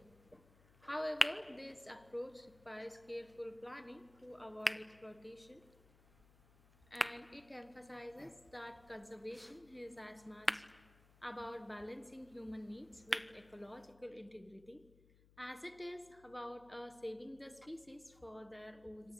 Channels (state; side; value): noise; left; hum, 24 dB below the sound